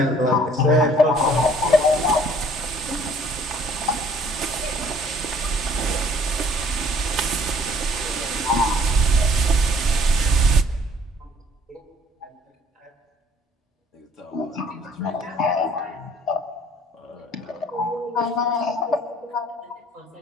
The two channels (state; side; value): normal; both; correlation 0.58